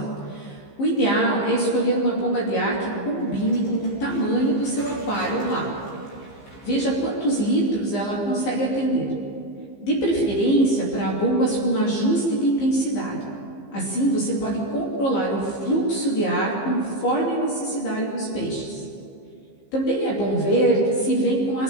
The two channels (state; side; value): late; right; 15 ms